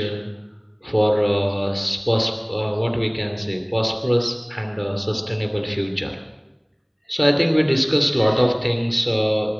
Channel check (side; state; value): both; identical; correlation 1.00